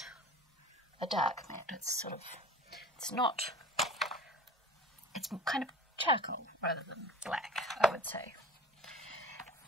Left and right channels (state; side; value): normal; both; correlation 0.40